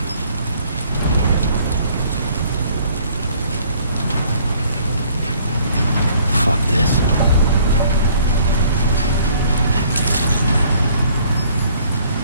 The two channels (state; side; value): inverted; both; correlation -0.59